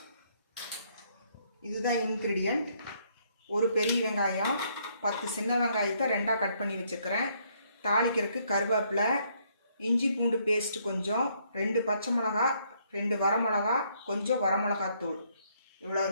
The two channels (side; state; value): both; inverted; correlation -0.70